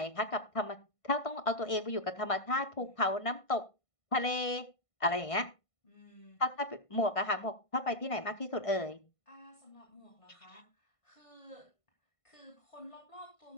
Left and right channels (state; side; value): late; right; 1.5 ms